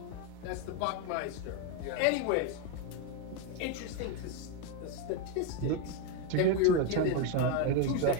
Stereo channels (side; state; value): both; different; correlation 0.02